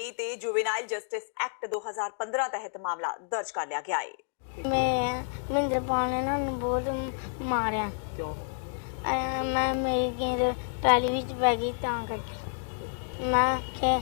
ਤੇ ਜੁਵੇਨਾਈਲ ਜਸਟਿਸ ਐਕਟ 2015 ਤਹਿਤ ਮਾਮਲਾ ਦਰਜ ਕਰ ਲਿਆ ਗਿਆ ਹੈ। ਮੈਂ ਮਹਿੰਦਰਪਾਲ ਨੇ ਨਾ ਬਹੁਤ ਮਾਰਿਆ। ਕਿਉਂ? ਮੈਂ ਮੇਰੀ ਗੇਂਦ ਟਰਾਲੀ ਵਿੱਚ ਬੈ ਗਈ ਤਾਂ ਕਰਕੇ। ਮੈਂ ਕਿ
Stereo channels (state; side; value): silent; right; digital silence